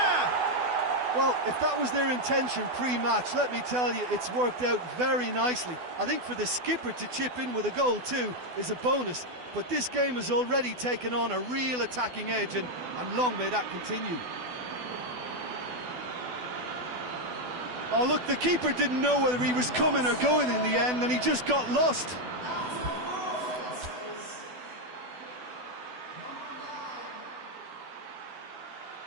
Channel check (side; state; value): left; late; 12 ms